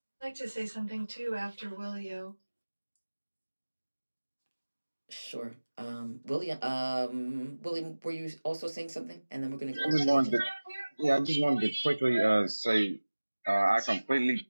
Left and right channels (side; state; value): both; inverted; correlation -1.00